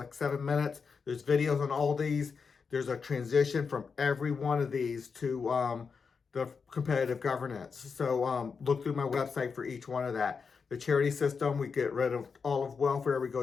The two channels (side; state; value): right; quieter; 5.5 dB